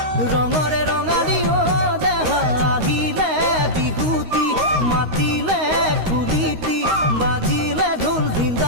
ৰঙৰে ৰঙালী দেহা আহিলে বিহুতি মাতিলে কুলিতি বাজিলে ঢোল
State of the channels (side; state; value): left; late; 13 ms